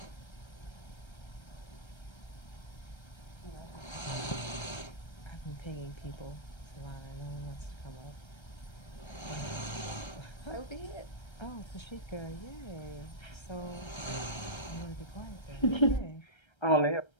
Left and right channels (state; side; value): late; right; 1.3 ms